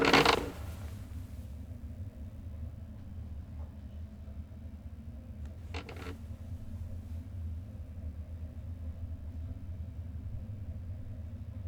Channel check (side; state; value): both; identical; correlation 1.00